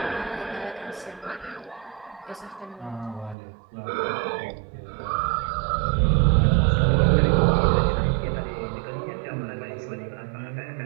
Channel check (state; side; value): drops out; left; at 3.4 s